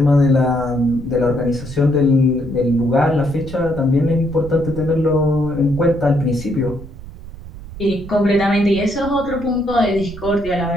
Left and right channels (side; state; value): right; noise; rumble, 14 dB below the sound